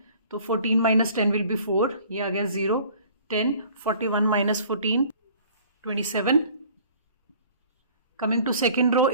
तो 14 माइनस 10 विल बी 4, ये आ गया 0. 10, 41 minus 14, 27. Coming to second row,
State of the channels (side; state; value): both; inverted; correlation -0.51